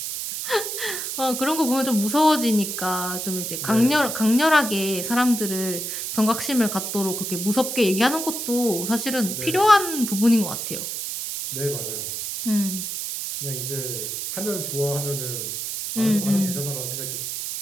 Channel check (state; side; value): noise; right; hiss, 4 dB below the sound